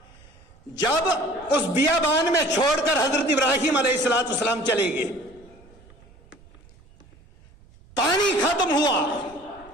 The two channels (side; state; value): right; noise; rumble, 26 dB below the sound